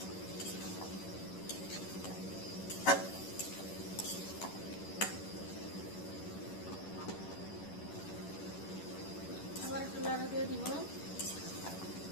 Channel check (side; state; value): right; late; 11 ms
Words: আবার একটু লাড়া দিয়ে দিব।